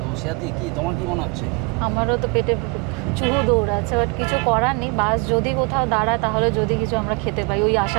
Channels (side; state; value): left; quieter; 30.0 dB